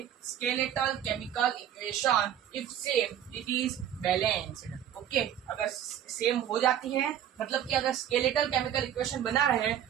skeletal chemical equation, if same it is balanced. Okay, अगर सेम हो जाती है, मतलब कि अगर स्केलेटल केमिकल इक्वेशन बना रहे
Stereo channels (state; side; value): quieter; left; 10.1 dB